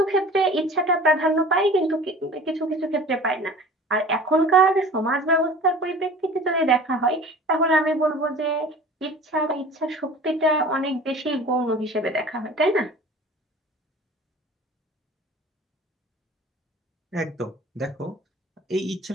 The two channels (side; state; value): both; normal; correlation 0.42